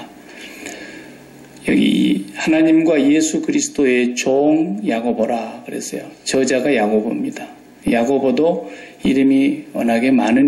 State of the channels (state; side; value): identical; both; correlation 1.00